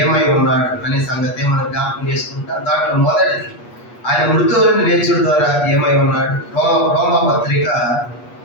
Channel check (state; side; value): late; right; 8.3 ms